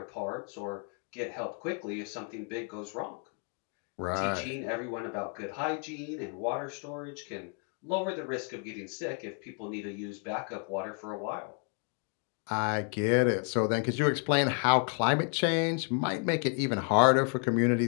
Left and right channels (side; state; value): right; quieter; 39.8 dB